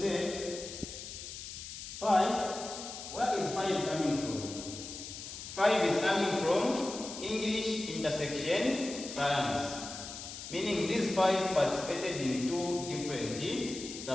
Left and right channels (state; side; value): noise; left; hiss, 10 dB below the sound